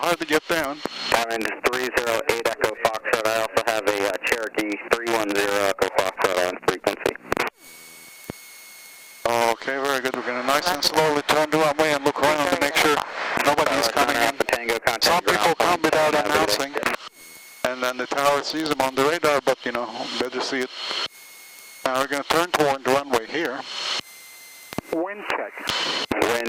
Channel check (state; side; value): identical; both; correlation 1.00